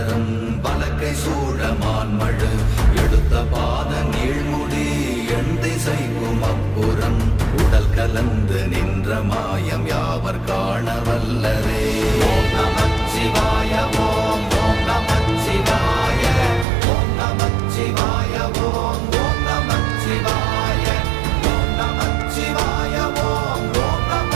வலக்கை சூழமான்மழு எடுத்த பாத நீழ்முடி எண் திசைக்கும் அப்புறம் உடல் கலந்து நின்ற மாயம் யாவர் காண வல்லரே. ஓம் நமச்சிவாய ஓம் ஓம் நமச்சிவாய ஓம் நமச்சிவாய ஓம் ஓம் நமச்சிவாய ஓம் நமச்சிவாய ஓம் ஓம்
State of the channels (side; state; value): left; drops out; at 16.7 s